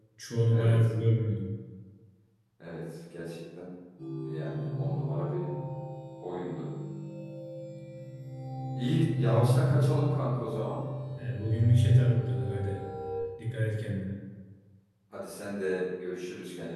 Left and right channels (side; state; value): both; identical; correlation 1.00